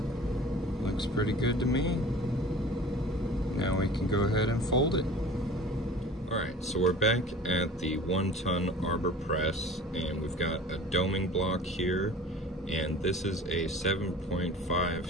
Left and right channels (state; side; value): normal; both; correlation 0.43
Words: Pretty good to me. Now we can go ahead and fold it. Alright, so we're back at the 1-ton arbor press, and we've got a doming block here, and this is a